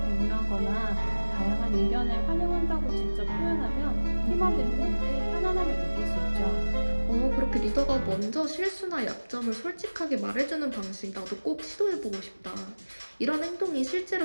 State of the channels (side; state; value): both; inverted; correlation -1.00